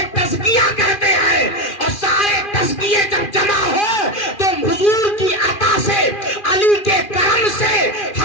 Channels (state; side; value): late; right; 2.4 ms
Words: تزکیہ کہتے ہیں. اور سارے تزکیے جب جمع ہو تو حضور کی عطا سے، علی کے کرم سے،